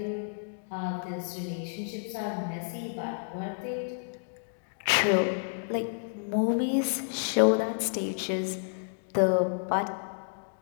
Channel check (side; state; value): right; silent; digital silence